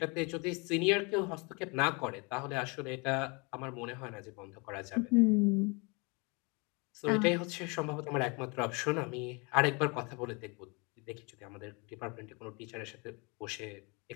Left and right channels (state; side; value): quieter; right; 30.2 dB